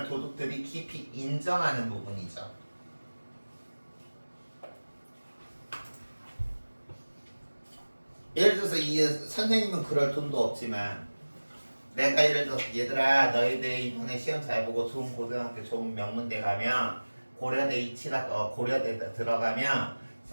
도둑들이 깊이 인정하는 부분이죠. 예를 들어서 이 선생님은 그럴 돈도 없지만 내가 예를 들어서 얘들아 너희들 이번에 시험 잘 보고 좋은 고등학교 좋은 명문대 가면 고려대 고려대 들어가면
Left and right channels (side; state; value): both; inverted; correlation -1.00